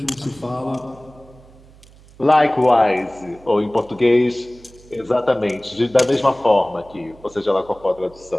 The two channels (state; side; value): noise; right; hum, 25 dB below the sound